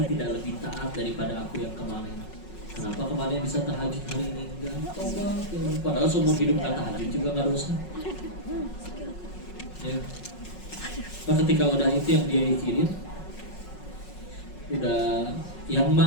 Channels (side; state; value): right; late; 5.4 ms